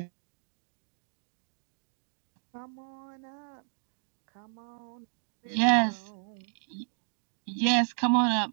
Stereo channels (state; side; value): silent; left; 56 dB below the other